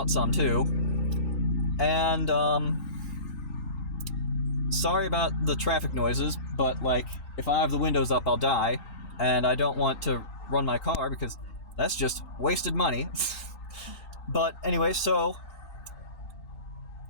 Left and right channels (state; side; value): late; right; 3.9 ms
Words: some too. And sorry about the traffic noises, but like if I have the windows up, I'll die, and I don't want to run my car because that's just wasted money. But anyway, so